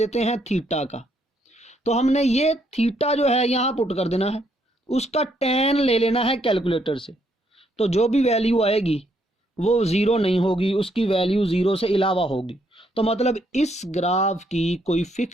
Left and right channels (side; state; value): both; normal; correlation 0.73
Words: हैं थीटा का। तो हमने ये थीटा जो है यहां पुट कर देना है, उसका tan ले लेना है कैलकुलेटर से। तो जो भी वैल्यू आएगी वो 0 नहीं होगी, उसकी वैल्यू 0 से अलावा होगी। तो मतलब इस ग्राफ की कोई